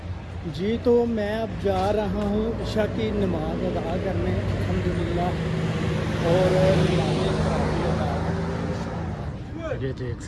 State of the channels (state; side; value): identical; both; correlation 1.00